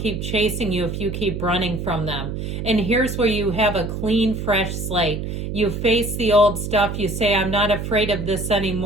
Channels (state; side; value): noise; right; hum, 5 dB below the sound